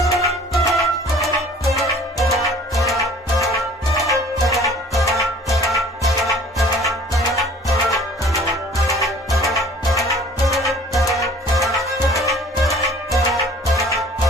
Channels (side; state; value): both; normal; correlation 0.50